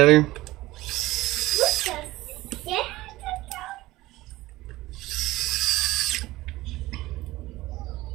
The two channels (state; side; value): quieter; left; 18.0 dB